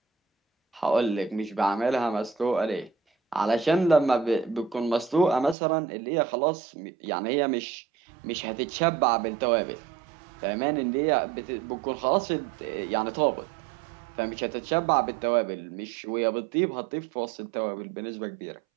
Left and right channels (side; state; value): left; drops out; at 5.6 s